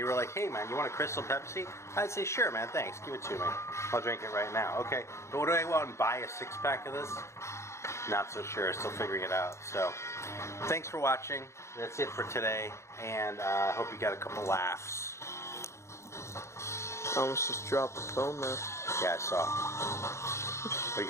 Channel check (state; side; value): late; right; 0.14 ms